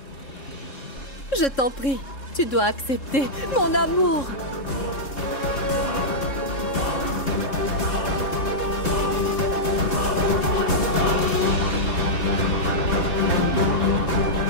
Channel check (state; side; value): late; right; 3.7 ms